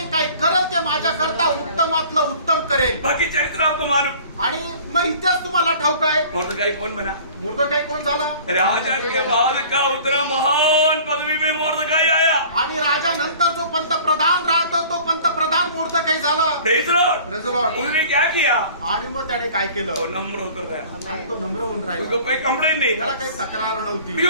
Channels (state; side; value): inverted; both; correlation -0.47